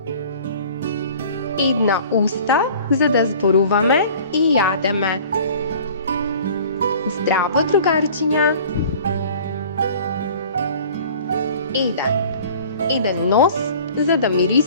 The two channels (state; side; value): inverted; both; correlation -0.46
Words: Една уста за да зборуваме и јадеме. Здраво, другарчиња! Еден нос за да